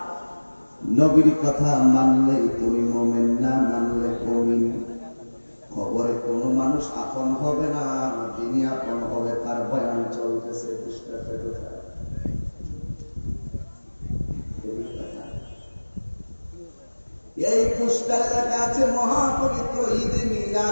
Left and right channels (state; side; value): inverted; both; correlation -1.00